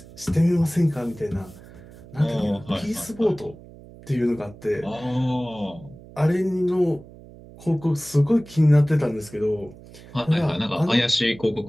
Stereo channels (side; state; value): right; noise; hum, 20 dB below the sound